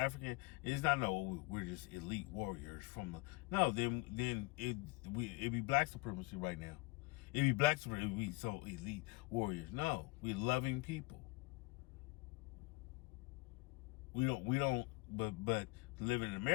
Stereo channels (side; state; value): right; quieter; 24.6 dB